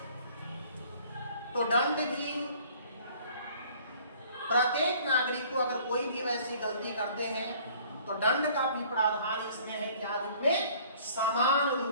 तो दंड भी प्रत्येक नागरिक को, अगर कोई भी वैसी गलती करते हैं तो दंड का भी प्रावधान इसमें है, क्या रूप में, समान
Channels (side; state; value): both; inverted; correlation -0.54